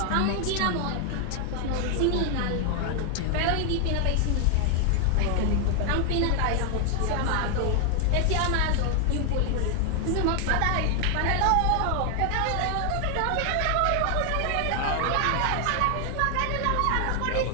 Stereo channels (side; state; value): both; different; correlation 0.00